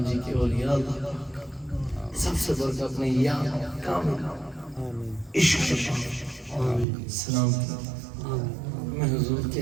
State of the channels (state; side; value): drops out; left; at 6.9 s